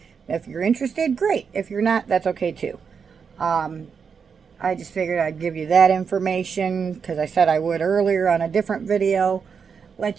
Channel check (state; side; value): quieter; left; 6.2 dB